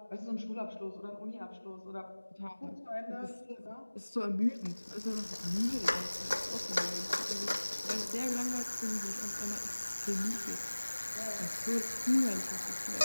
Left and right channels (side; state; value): both; inverted; correlation -1.00